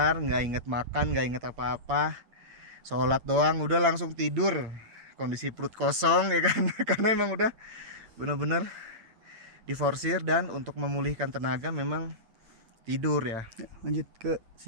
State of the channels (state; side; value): late; left; 8.7 ms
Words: nggak inget makan, nggak inget apa-apa. Sholat doang, udah langsung tidur. Kondisi perut kosong ya kan. Karena emang udah bener-bener diforsir, dan untuk memulihkan tenaga memang tidur ya. Lanjut ke